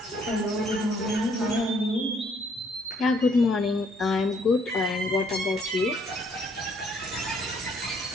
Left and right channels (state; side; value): normal; both; correlation 0.66